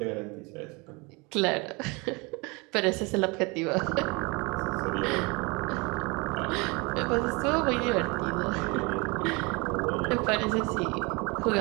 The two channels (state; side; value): quieter; left; 27.9 dB